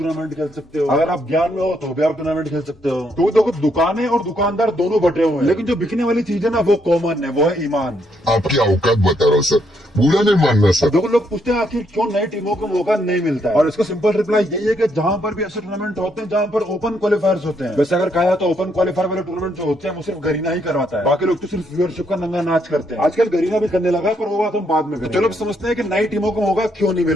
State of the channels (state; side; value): normal; both; correlation 0.75